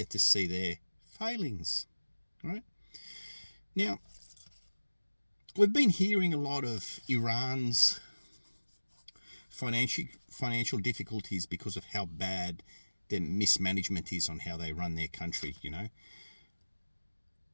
to see their failings, right? Now, we've been hearing a lot of Iran's financial difficulties because of how bad their mismanagement is on how they run their country,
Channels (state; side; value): inverted; both; correlation -1.00